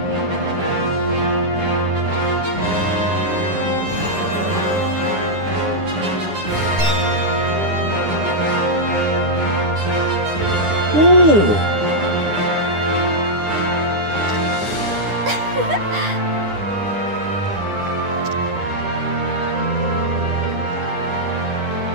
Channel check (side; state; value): left; late; 9.9 ms